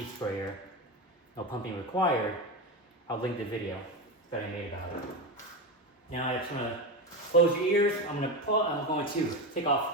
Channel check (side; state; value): both; normal; correlation 0.17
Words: sprayer, no pumping required, I'll link the video that I made about it. Now I just want to close your ears. I'm going to take